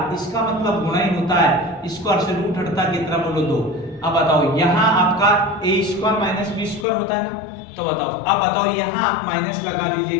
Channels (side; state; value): right; drops out; at 6.9 s